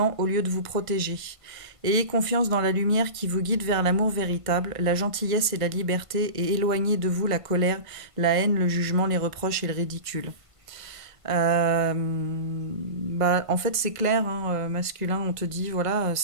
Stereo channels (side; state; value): left; late; 1.5 ms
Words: au lieu de vous protéger. Ayez confiance dans la lumière qui vous guide vers l'amour véritable, la gentillesse et la liberté et éloignez de vous la colère, la haine, le jugement, les reproches et le ridicule. En fait, c'est clair, hein, masculin, on te dit, voilà,